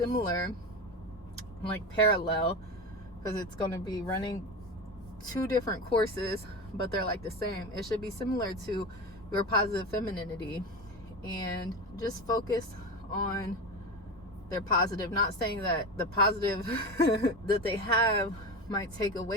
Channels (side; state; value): both; normal; correlation 0.24